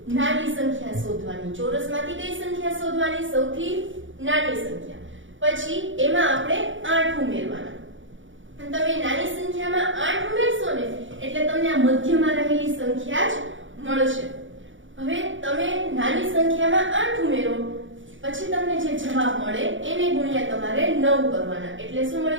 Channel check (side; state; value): left; late; 0.56 ms